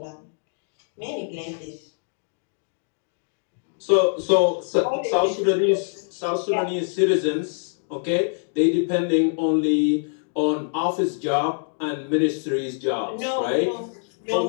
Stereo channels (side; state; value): right; silent; digital silence